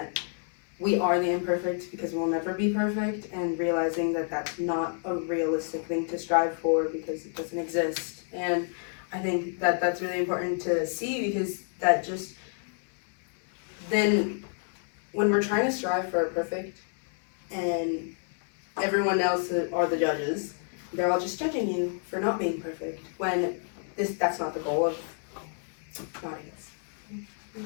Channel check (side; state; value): right; silent; 58 dB below the other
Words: we are the imperfect because we'll never be perfect, and realizing that that's not a realistic thing to strive for because it doesn't exist. And I think that that's really important to see, because that just then when we're trying to strive for a perfect and everyone else are the judges, they're all just judging you for not being perfect, when that's not the goal of Noddings.